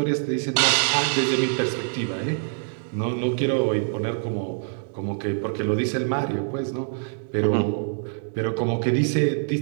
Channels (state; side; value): silent; left; digital silence